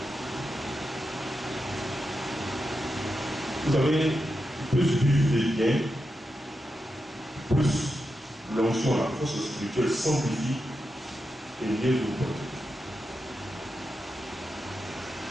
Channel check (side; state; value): both; normal; correlation 0.88